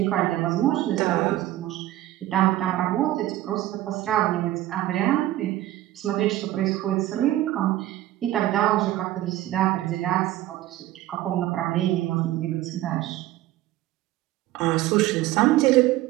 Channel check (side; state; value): left; quieter; 14.9 dB